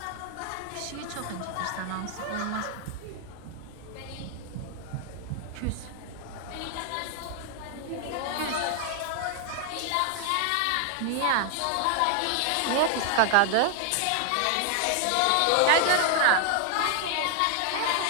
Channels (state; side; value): different; both; correlation 0.00